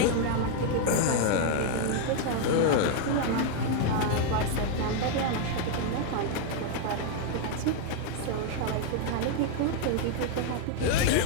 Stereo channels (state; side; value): different; both; correlation 0.00